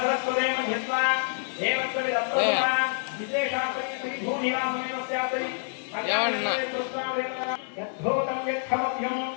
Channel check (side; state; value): right; silent; digital silence